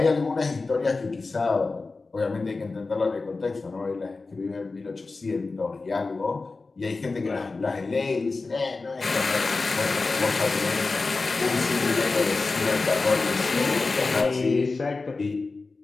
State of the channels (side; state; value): right; quieter; 3.8 dB